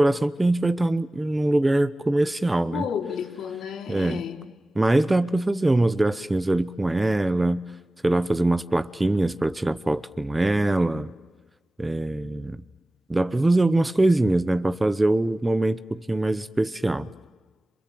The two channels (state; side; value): normal; both; correlation 0.97